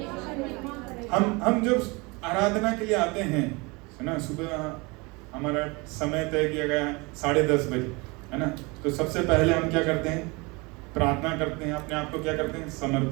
हम जब आराधना के लिए आते हैं, है ना, सुबह हमारा समय तय किया गया है 10:30 बजे, है ना, तो सबसे पहले हम क्या करते हैं? प्रार्थना करते हैं, अपने आप को क्या करते हैं?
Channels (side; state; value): left; quieter; 26.6 dB